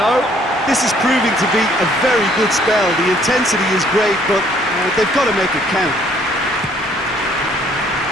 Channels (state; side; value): normal; both; correlation 0.62